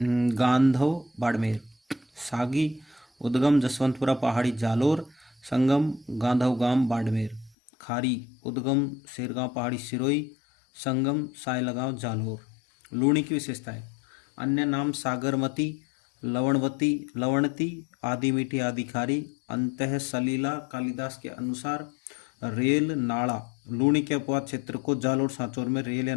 गांधव बाड़मेर, सागी उद्गम जसवंतपुरा पहाड़ी जालोर संगम गांधव गांव बाड़मेर, खारी उद्गम शेरगांव पहाड़ी सिरोही संगम सायलगांव जालोर। लूणी की विशेषताएं: अन्य नाम सागरमती, लवणवती, लवणती, आदि मीठी, आदि खारी, अंतः सलीला। कालिदास के अनुसार रेल नाड़ा। लूणी के अपवाद क्षेत्र को जालोर सांचौर में रेल या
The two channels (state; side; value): drops out; right; at 7.6 s